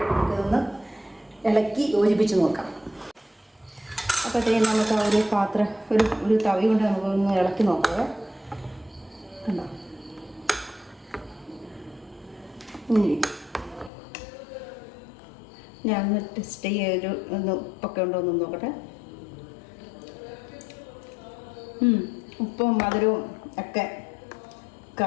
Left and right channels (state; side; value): drops out; right; at 13.9 s